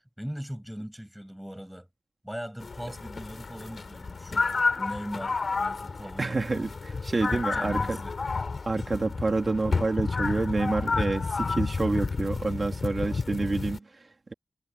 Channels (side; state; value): both; normal; correlation 0.93